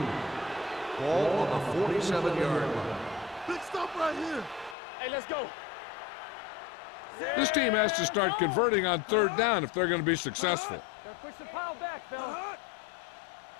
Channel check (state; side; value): drops out; right; at 4.8 s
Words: 2. Ball on the 47-yard line. Big stop right here. Hey, let's go. This team has to start converting on 3rd down if they're going to be successful. Gotta push the pile back, fella.